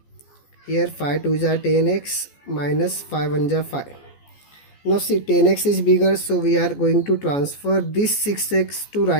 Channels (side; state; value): right; late; 14 ms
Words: Here 5 2 ja 10x minus 5 1 ja 5. Now see, 10x is bigger, so we are going to transfer this 6x to